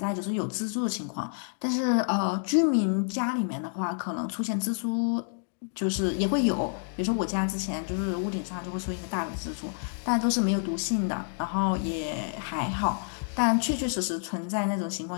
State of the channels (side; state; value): right; silent; digital silence